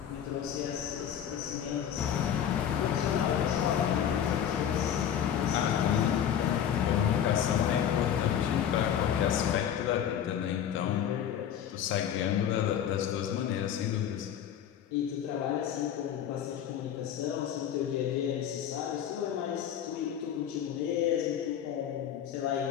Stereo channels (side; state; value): right; quieter; 9.4 dB